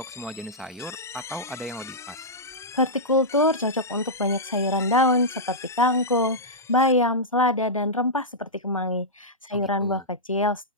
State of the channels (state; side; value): normal; both; correlation -0.11